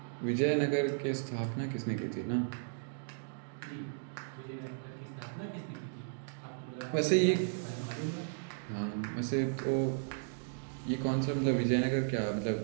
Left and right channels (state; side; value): silent; left; digital silence